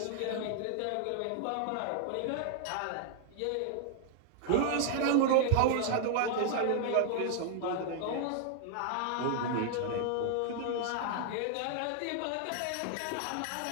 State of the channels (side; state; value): both; different; correlation 0.00